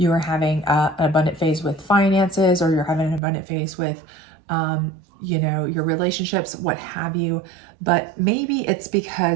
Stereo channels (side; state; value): left; drops out; at 3.2 s